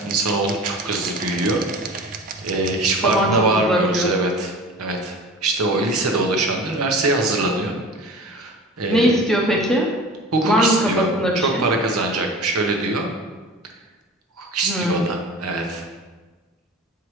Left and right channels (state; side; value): normal; both; correlation 0.38